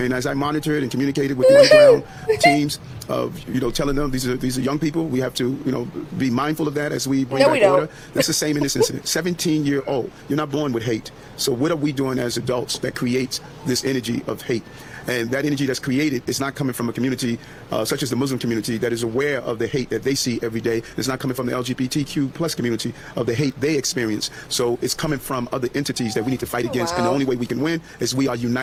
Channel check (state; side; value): identical; both; correlation 1.00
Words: as I monitored and communicated with the underground teams, telling them these are young people, we have to, be mindful of that as we bring back order. That's the same in this incident. 17-year-old, you're not born with hate. So what are we doing as adults that creates this energy of hate? And that energy that's created is not coming from a community such as the Muslim community that is aware of the hate that they see every day. It's not coming from the LGBTQ plus community of the hate they experience. So it's coming from other entities that we need to fight against. And the only way we can win is we are